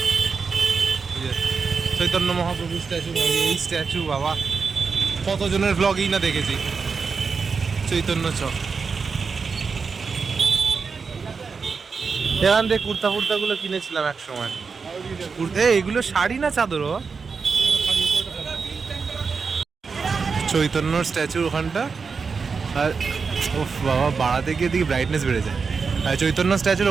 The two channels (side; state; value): left; quieter; 5.2 dB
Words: চৈতন্য মহাপ্রভু স্ট্যাচু, এই স্ট্যাচু বাবা কতজনের ব্লগই না দেখেছি। চৈতন্য চক, এখান থেকে কুর্তা ফুর্তাগুলো কিনেছিলাম এক সময়। এগুলো শাড়ি না চাদর? চৈতন্যর স্ট্যাচু ওখানটা। আর ও বাবা বাড়াতে গিয়ে দিকে ব্রাইটনেস বেড়ে যায়। আর চৈতন্য